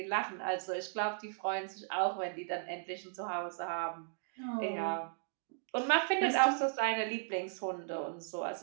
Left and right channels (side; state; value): left; silent; digital silence